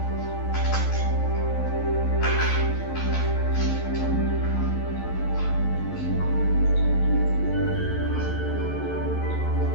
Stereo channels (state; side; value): late; right; 11 ms